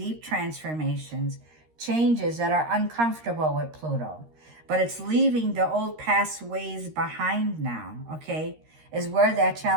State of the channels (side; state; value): left; late; 13 ms